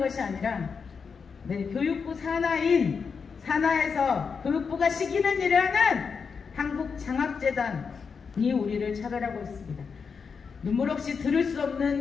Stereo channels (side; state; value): right; quieter; 5.7 dB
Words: 아니라 네, 교육부 산하에서 교육부가 시키는 일을 하는 한국장학재단이 우리를 차별하고 있습니다. 눈물 없이 들을 수